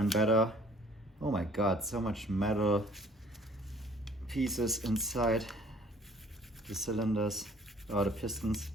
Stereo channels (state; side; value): normal; both; correlation 0.56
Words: better, oh my god, so much metal pieces inside the cylinders or the pistons.